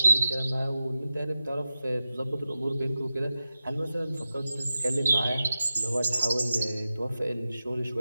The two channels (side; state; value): both; inverted; correlation -0.93